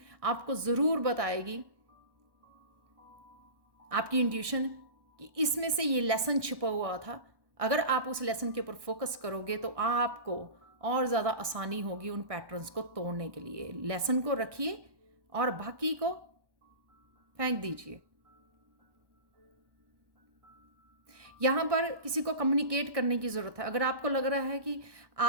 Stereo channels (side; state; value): left; late; 1.2 ms